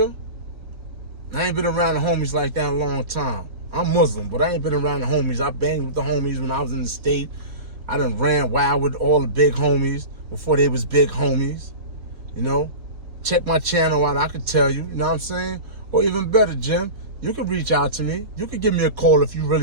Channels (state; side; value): late; left; 4.0 ms